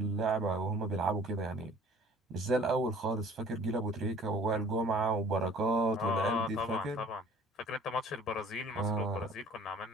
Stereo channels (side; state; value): both; normal; correlation 0.51